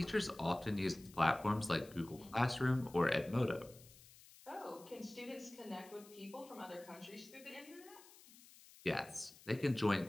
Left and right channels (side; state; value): left; noise; hiss, 21 dB below the sound